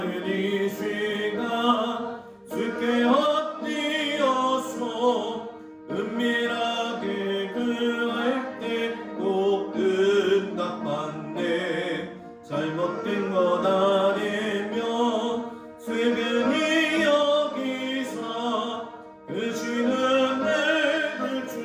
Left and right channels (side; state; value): both; identical; correlation 1.00